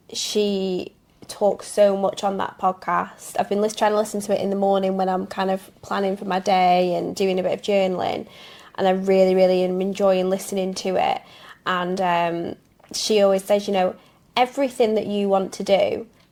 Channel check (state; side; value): identical; both; correlation 1.00